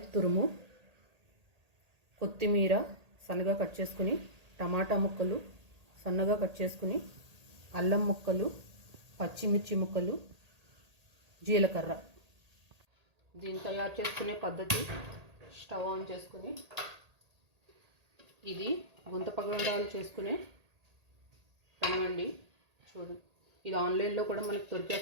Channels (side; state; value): left; late; 1.8 ms